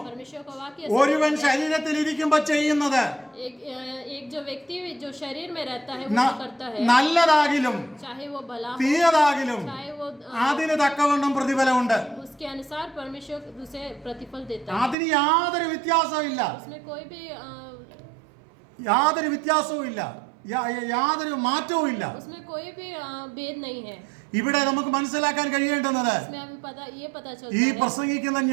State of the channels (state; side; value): drops out; left; at 15.0 s